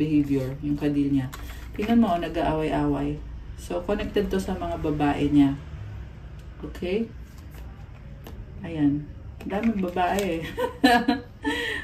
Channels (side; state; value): both; identical; correlation 1.00